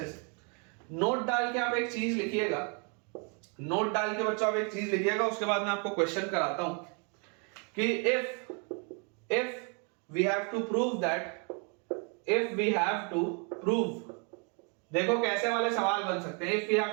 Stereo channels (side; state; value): left; quieter; 36.7 dB